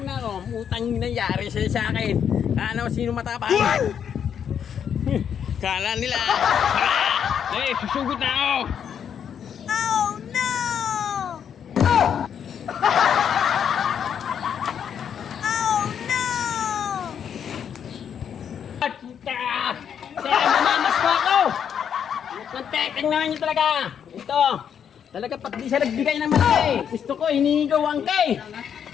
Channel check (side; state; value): right; quieter; 8.2 dB